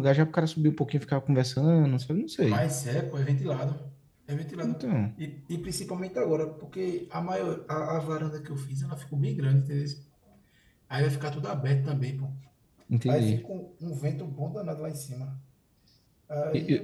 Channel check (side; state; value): both; identical; correlation 1.00